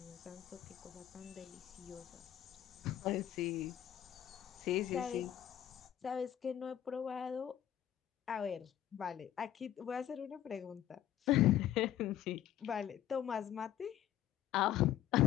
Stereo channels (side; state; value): right; quieter; 11.6 dB